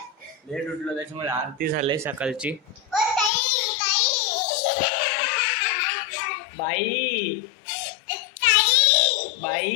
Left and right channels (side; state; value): right; drops out; at 3.3 s